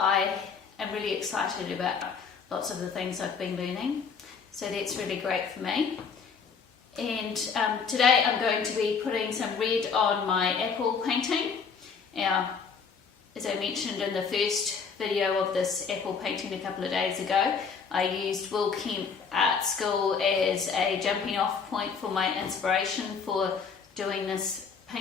am really excited about lots of the things I've been learning. So that's really great for me. And today I'm going to be putting some red on my apple painting. Now, as I mentioned in the first video of this apple painting a couple of days ago, I used Will Kemp Art School as a jumping off point for my inspiration for doing this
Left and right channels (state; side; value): quieter; right; 5.8 dB